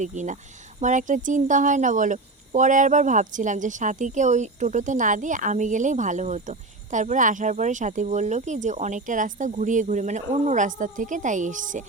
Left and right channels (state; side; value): quieter; left; 3.2 dB